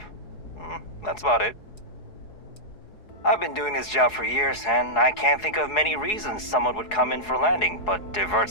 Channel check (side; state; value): right; late; 4.7 ms